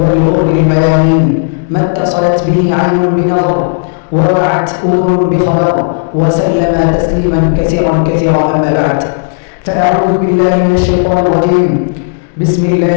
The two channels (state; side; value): silent; right; digital silence